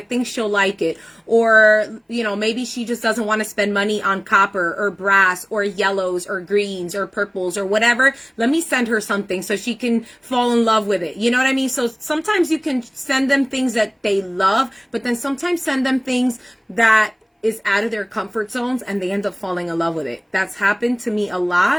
she'll like it. Or, you know, maybe she just doesn't want to spend money on copper or brass or yellows or greens or purples or whatever. Let me send her something so she can fall in love with it. You know what I mean? So sometimes you can send them things that they love, but then sometimes send them things that is out of their comfort zones and they end up falling in love with it. That's happened to me a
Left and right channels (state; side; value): identical; both; correlation 1.00